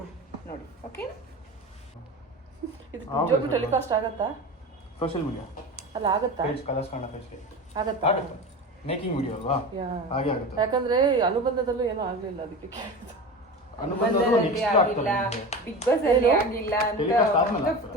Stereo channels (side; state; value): both; normal; correlation 0.29